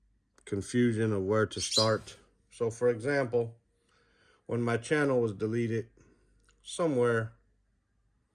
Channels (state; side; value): identical; both; correlation 1.00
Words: confusion of where to start. So for example, when my channel was deleted somewhere,